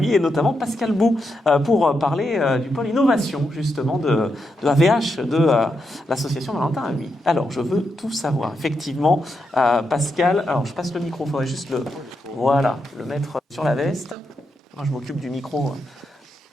et notamment Pascal Bou pour parler du pôle innovation justement de AVH, de l'association Valentin Ahuy. Alors je veux tout savoir. Effectivement, Pascal, alors je passe le micro, il faudrait juste le mettre sur la veste. Moi je m'occupe du micro.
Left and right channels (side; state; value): both; normal; correlation 0.84